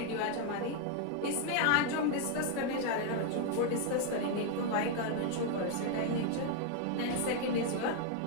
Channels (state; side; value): different; both; correlation 0.00